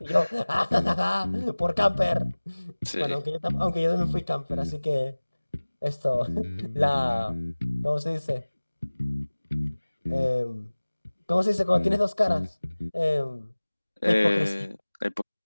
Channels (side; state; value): both; inverted; correlation -1.00